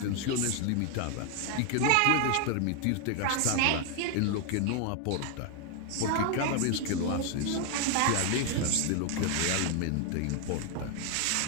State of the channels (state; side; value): different; both; correlation 0.01